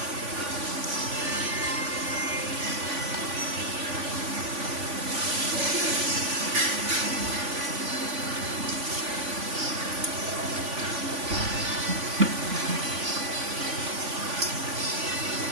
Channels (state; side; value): late; left; 3.5 ms